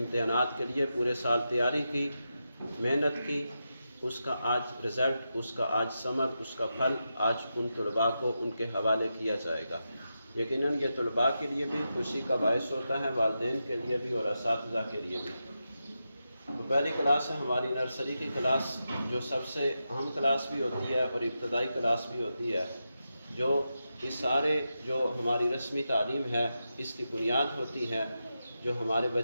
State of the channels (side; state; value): both; inverted; correlation -0.88